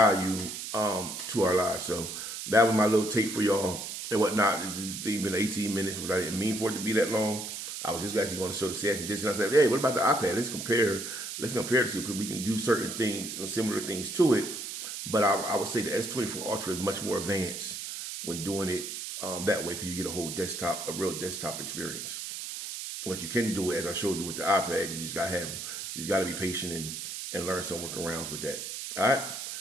to our lives. So that was my little take for y'all and whatnot. It's been 18 minutes, but I didn't mean for it to be that long. I was just actually going to show the Samsung Dex, and I said, hey, what about the iPad? Let's compare the two, because we can do certain things, similar things to it. But I would say the S24 Ultra is much more advanced when doing it that way, because you get a real desktop experience. What you can do, as I showed you with the iPad, you just got to be patient and learn some workarounds with that. All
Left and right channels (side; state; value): right; noise; hiss, 7 dB below the sound